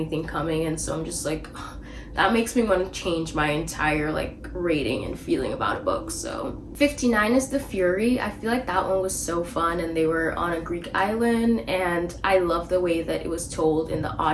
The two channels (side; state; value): both; identical; correlation 1.00